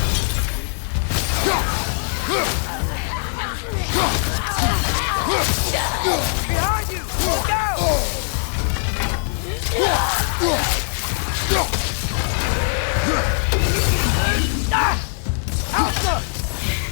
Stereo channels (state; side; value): silent; right; 63 dB below the other